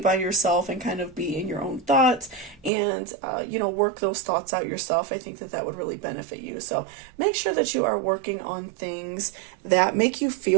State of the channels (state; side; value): drops out; left; at 2.7 s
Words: yourself and kind of be in your own thoughts and, work those thoughts out yourself. I think that that would really benefit you. So make sure that you are working on things that make you